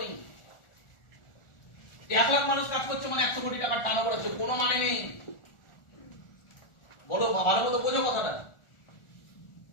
নেই। 1 লাখ মানুষ কাজ করছে মানে 100 কোটি টাকার টার্নওভার হচ্ছে, কোনো মানে নেই। বলো, ভালো মতো বোঝো কথাটা।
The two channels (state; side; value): late; right; 1.4 ms